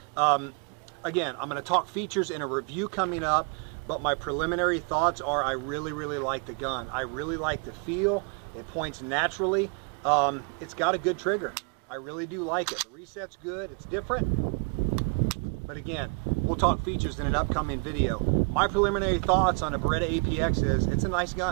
Again, I'm going to talk features in a review coming up, but my preliminary thoughts are I really like the gun. I really like the feel. It points naturally. It's got a good trigger. I really do like it. The reset's good. It's different. But again, we'll talk features in an upcoming video. My preliminary thoughts on a Beretta APX is it's a nice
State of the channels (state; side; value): quieter; left; 38.0 dB